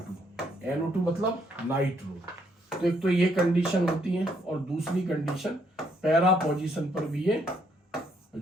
NO2 मतलब नाइट्रो। तो एक तो ये कंडीशन होती है, और दूसरी कंडीशन पैरा पोजीशन पर भी ये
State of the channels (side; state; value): both; normal; correlation 0.71